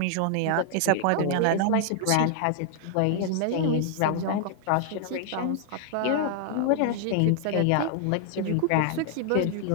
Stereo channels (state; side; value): different; both; correlation 0.00